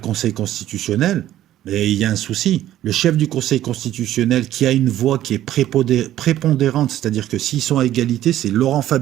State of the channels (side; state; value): left; quieter; 13.0 dB